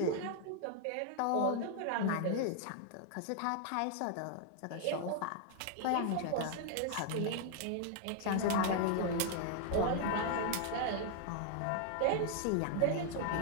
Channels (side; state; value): both; different; correlation 0.00